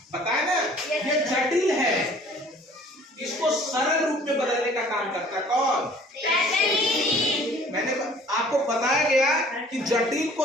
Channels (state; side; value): normal; both; correlation 0.52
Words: पता है ना, ये जटिल है, इसको सरल रूप में बदलने का काम करता है। कौन? मैंने आपको बताया गया कि जटिल